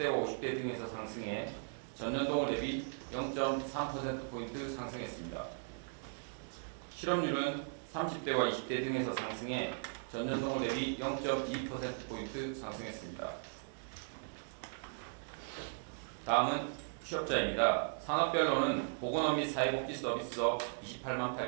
50대 등에서 상승해 전년 동월 대비 0.3%포인트 상승했습니다. 실업률은 30대와 20대 등에서 상승해 전년 동월 대비 0.2%포인트 상승했습니다. 다음은 취업자입니다. 산업별로는 보건업 및 사회복지 서비스업 28만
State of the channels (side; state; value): left; silent; digital silence